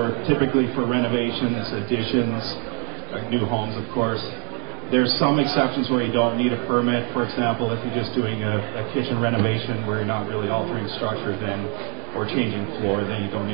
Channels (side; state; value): left; quieter; 38.7 dB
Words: typically for renovations, additions, new homes, of course. There's some exceptions where you don't need a permit. For example, if you're just doing a kitchen renovation where you're not really altering structure or changing floor, then you don't